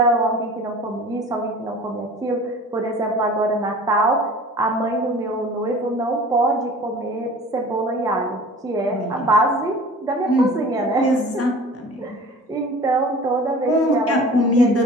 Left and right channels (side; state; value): both; normal; correlation 0.43